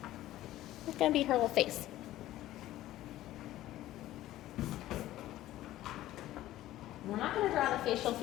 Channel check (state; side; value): quieter; right; 14.7 dB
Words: It's gonna be her little face. We're not going to draw the facial